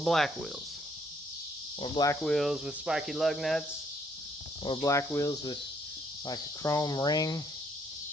wheels? Or black wheels with spiky lug nuts, or black wheels with like a chrome ring,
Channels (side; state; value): both; normal; correlation 0.68